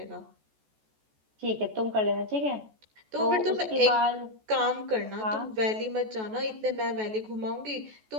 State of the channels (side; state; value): left; late; 14 ms